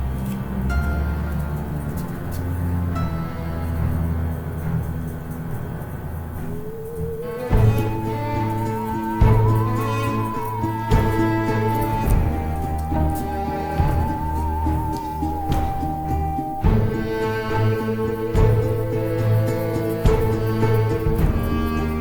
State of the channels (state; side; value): identical; both; correlation 1.00